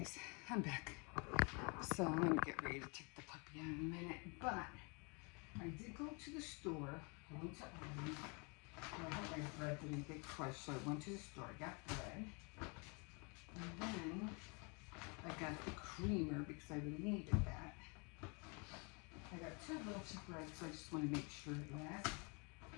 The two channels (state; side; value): quieter; right; 32.9 dB